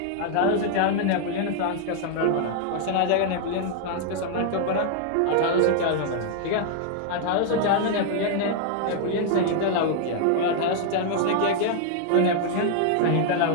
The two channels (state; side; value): different; both; correlation 0.00